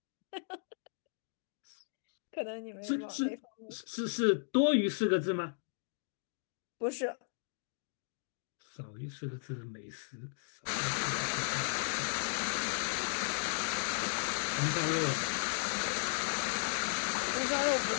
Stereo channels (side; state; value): right; silent; digital silence